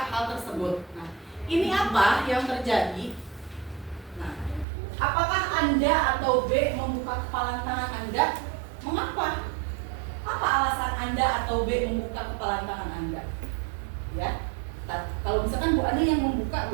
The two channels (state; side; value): drops out; left; at 4.7 s